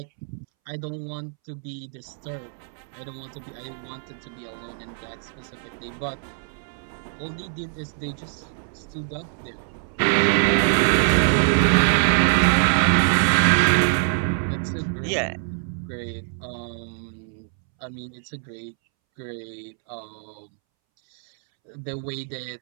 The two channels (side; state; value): left; silent; 62 dB below the other